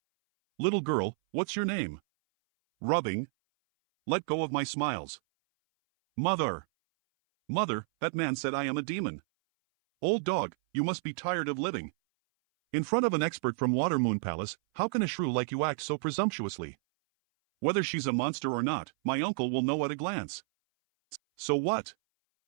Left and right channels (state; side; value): silent; left; 57 dB below the other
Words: Little girl, what's your name? Rubbing. Let go of my Smiles. Mother. Mother, that man said I am a demon. Old dog, you must be tired of living. In front of an expert from Watermoon Palace, how can a shrew like you act so presumptuously? Whether she's a monster or not, my uncle will know at a glance. So what?